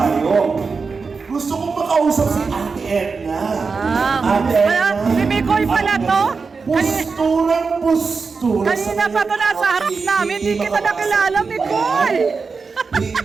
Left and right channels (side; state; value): left; quieter; 4.8 dB